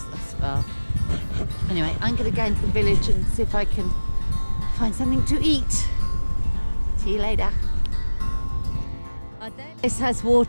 thus far. Anyway, I'm going to go into the village and see if I can find something to eat. See you later. This has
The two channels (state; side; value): inverted; both; correlation -1.00